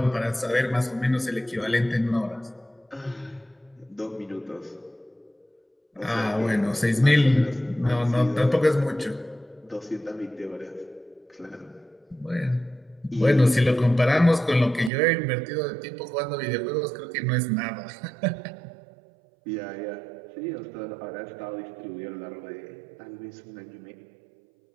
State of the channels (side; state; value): left; drops out; at 14.9 s